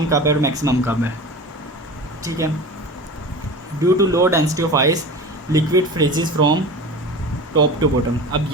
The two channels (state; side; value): normal; both; correlation 0.33